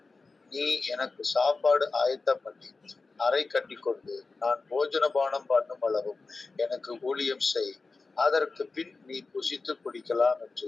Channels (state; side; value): quieter; right; 3.9 dB